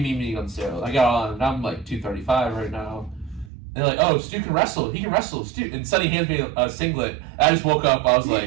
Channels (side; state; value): left; drops out; at 3.5 s